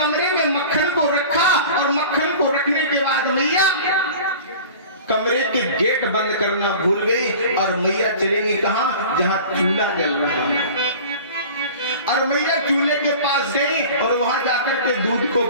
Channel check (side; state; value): both; inverted; correlation -0.40